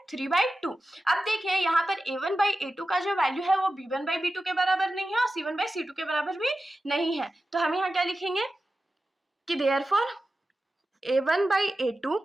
3/2। अब देखिए यहाँ पर a1/a2 का जो वैल्यू है वो b1/b2 के बराबर नहीं है और c1/c2 के बराबर भी नहीं है, तो हम यहाँ क्या लिखेंगे कि therefore a1/a2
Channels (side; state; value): both; normal; correlation 0.93